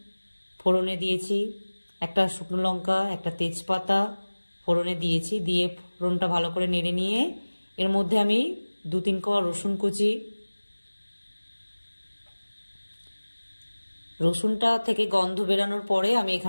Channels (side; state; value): both; inverted; correlation -1.00